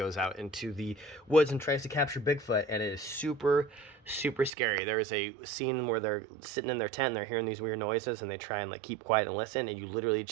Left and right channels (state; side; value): drops out; left; at 4.5 s